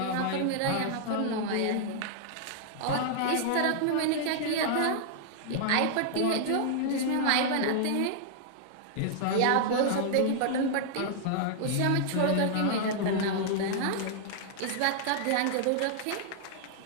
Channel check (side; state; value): both; different; correlation -0.01